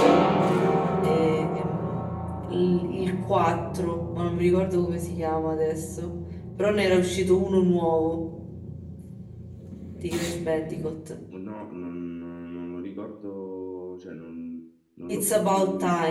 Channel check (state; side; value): identical; both; correlation 1.00